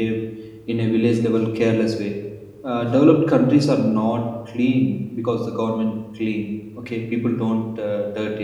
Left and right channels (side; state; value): both; identical; correlation 1.00